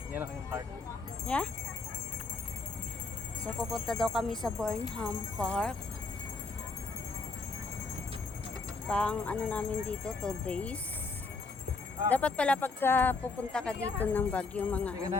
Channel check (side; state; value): right; quieter; 3.8 dB